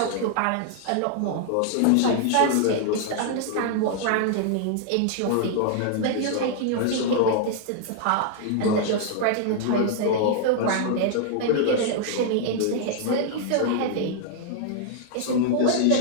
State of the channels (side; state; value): both; different; correlation -0.01